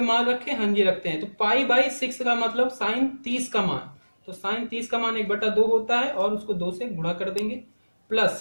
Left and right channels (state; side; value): inverted; both; correlation -1.00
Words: मान रखें, हाँ जी रखते हैं। तो पाई बाई 6 का मतलब साइन 30 का मान, तो साइन 30 का मान 1/2 होता है, और उसको 2 से गुणा कर देंगे,